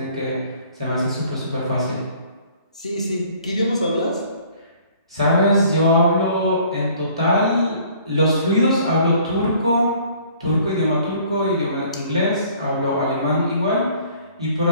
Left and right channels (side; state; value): both; inverted; correlation -0.55